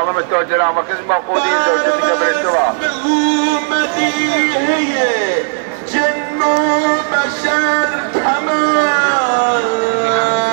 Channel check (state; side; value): silent; left; digital silence